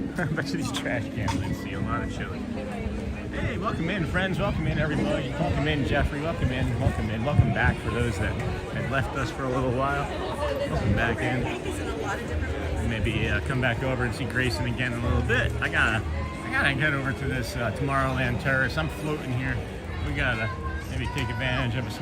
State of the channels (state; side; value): identical; both; correlation 1.00